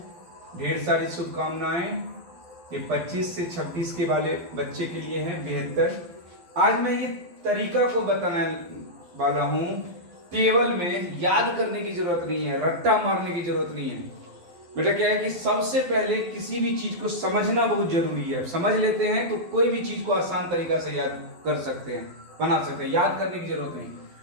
ढेर सारी शुभकामनाएं। ये 25 से 26 के वाले बच्चे के लिए है बेहतर। आज मैं ये तरीका को बताने वाला हूं। टेबल में याद करने की जरूरत नहीं है, रट्टा मारने की जरूरत नहीं है। बेटा क्या है कि सबसे पहले किसी भी चीज को समझना बहुत जरूरी है। समझ लेते हैं तो कोई भी चीज को आसान तरीका से याद कर सकते हैं, बना सकते हैं। याद करने की जरूरत नहीं।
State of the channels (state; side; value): late; left; 12 ms